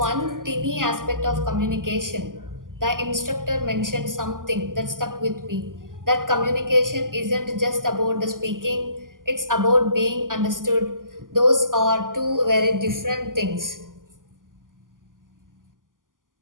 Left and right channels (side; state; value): left; late; 0.89 ms